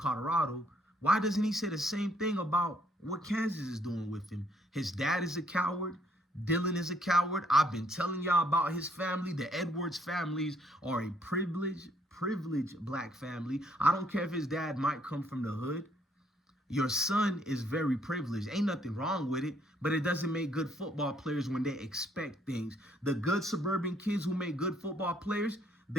Why doesn't he say the same thing about what Kansas is doing with him? His dad is a coward. Dylan is a coward. I've been telling y'all about his family. The Edwards families are a privileged black family. I don't care if his dad might come from the hood. Your son is very privileged. Ain't nothing wrong with it, but it doesn't make good football players when they expect things. The good suburban kids who make good football players,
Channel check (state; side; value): normal; both; correlation 0.67